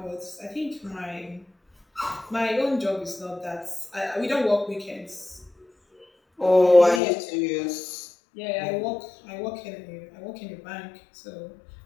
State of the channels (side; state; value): right; drops out; at 7.0 s